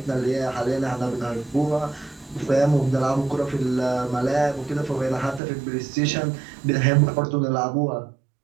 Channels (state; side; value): drops out; left; at 5.4 s